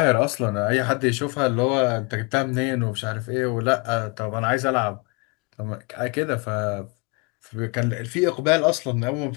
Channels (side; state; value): right; quieter; 29.6 dB